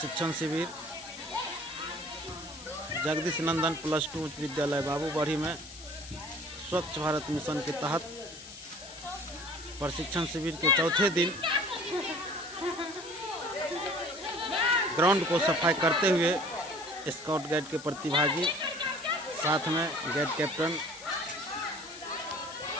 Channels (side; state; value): left; noise; hiss, 15 dB below the sound